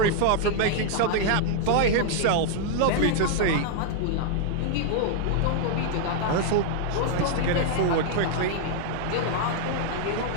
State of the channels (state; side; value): different; both; correlation -0.01